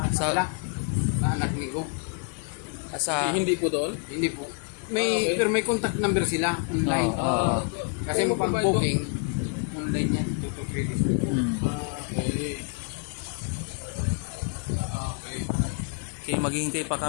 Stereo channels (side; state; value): right; quieter; 39.4 dB